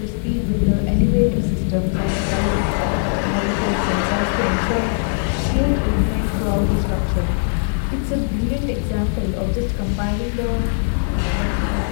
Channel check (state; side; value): silent; right; 66 dB below the other